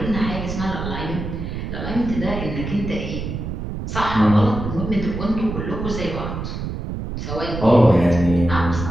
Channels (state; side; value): noise; right; rumble, 6 dB below the sound